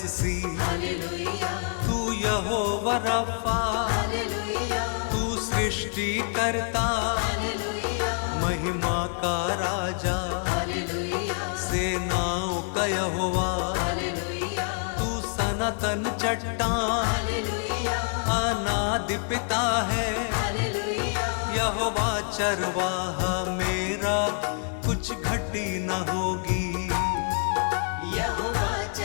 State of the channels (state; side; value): silent; right; 57 dB below the other